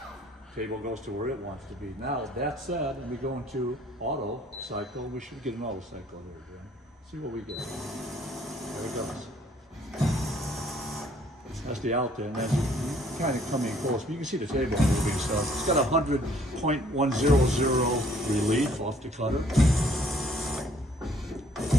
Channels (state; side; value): normal; both; correlation 0.61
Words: goes to where it wants to be. Now that said, and we go into auto cycle, we should get an auto cycle here, Jim. See what we get. There it goes. That's the out there, and that's kind of coming close. But you can see the table moving, so it's got 100.100 relief off the cutter.